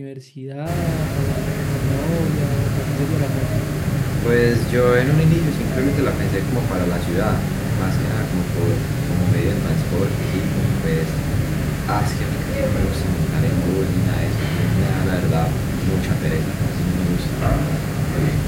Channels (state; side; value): identical; both; correlation 1.00